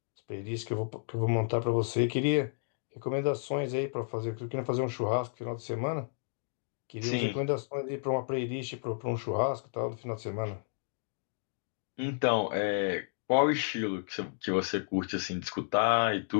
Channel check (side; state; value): right; silent; digital silence